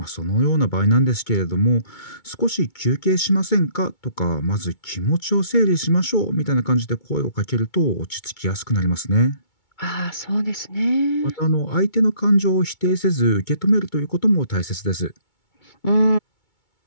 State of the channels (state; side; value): late; right; 2.2 ms